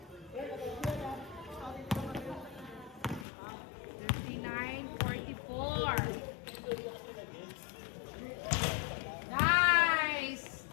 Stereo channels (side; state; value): right; drops out; at 3.2 s